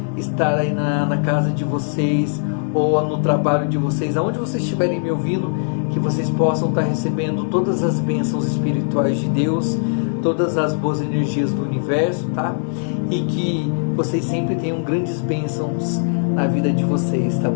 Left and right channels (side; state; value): right; silent; digital silence